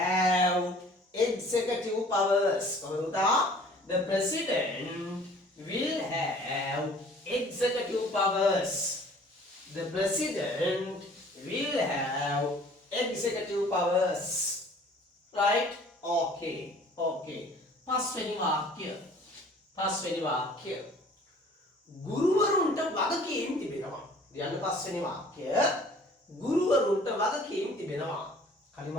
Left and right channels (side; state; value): both; normal; correlation 0.51